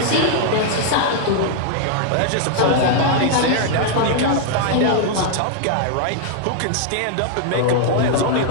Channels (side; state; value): both; different; correlation -0.01